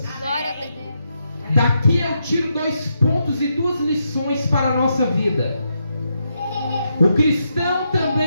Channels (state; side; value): inverted; both; correlation -0.82